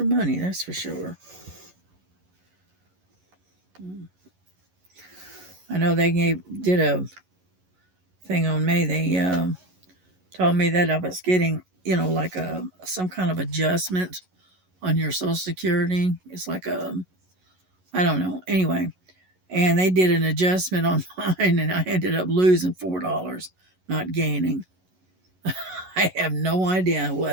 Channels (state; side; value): late; left; 11 ms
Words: money, that's for sure. Hmm. I know did a thing on me. They told me that I was getting, like some kind of adjustment on your Social Security. It's like I don't know. Anyway, and they did an adjustment on mine, and I ended up losing $4, not gaining. I have no idea